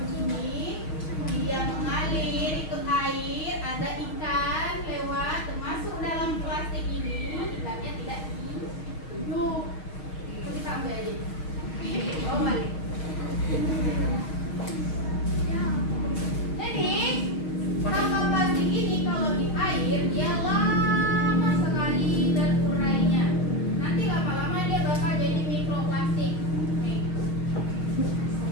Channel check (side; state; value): right; late; 6.4 ms